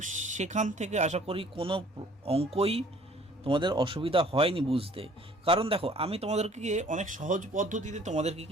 সেখান থেকে আশা করি কোনো অঙ্কই তোমাদের অসুবিধা হয়নি বুঝতে। কারণ দেখো, আমি তোমাদেরকে অনেক সহজ পদ্ধতিতে তোমাদেরকে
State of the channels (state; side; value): normal; both; correlation 0.55